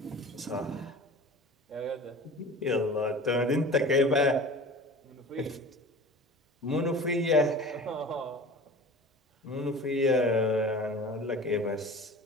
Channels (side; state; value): both; normal; correlation 0.38